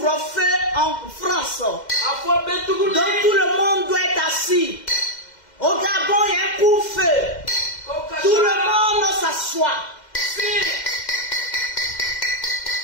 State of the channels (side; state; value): right; late; 2.1 ms